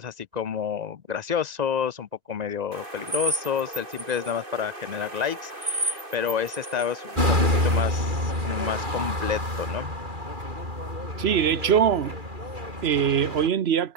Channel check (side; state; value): left; late; 2.4 ms